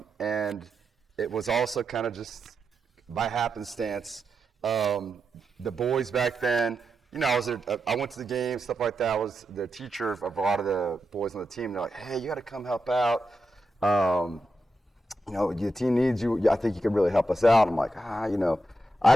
it was also kind of just by happenstance. The boys back then, I went to the game, stuff like that. I was the teacher of a lot of the boys on the team. They're like, hey, you got to come help out. The team needs you. I think you could really help us out. I'm like,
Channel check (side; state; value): both; normal; correlation 0.86